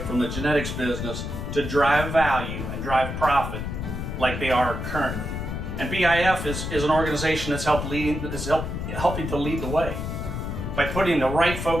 from the genetics business to drive value and drive profit like they are currently. And BIF is an organization that's helping to lead the way. By putting the right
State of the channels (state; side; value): noise; left; rumble, 5 dB below the sound